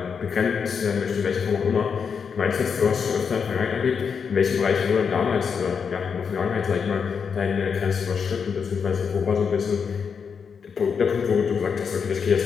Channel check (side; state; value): right; quieter; 6.3 dB